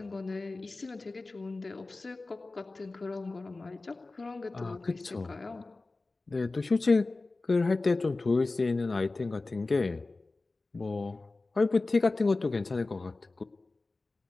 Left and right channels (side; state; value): right; quieter; 3.4 dB